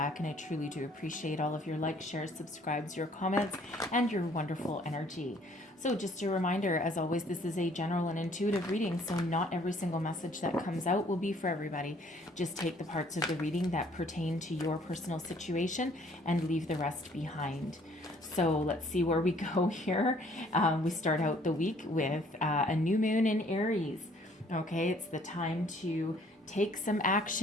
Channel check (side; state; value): both; normal; correlation 0.59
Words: and I truly do appreciate all of your likes, shares, subscribes, your comments, and your wonderful energy. So just a reminder, as always, this is a general and intuitive reading, so not every single message that comes out will be for everybody. Just take the parts of the reading that pertain to your personal situation and leave the rest behind. So let's see where we go here. We start out the week with a new moon in Aries. Okay, it's the time to take some